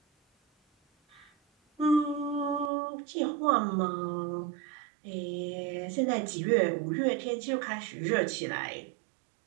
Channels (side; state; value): left; drops out; at 2.7 s